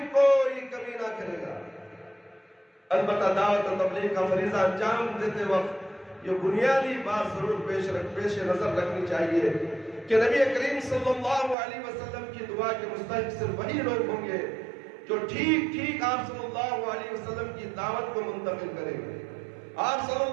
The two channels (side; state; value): left; drops out; at 11.6 s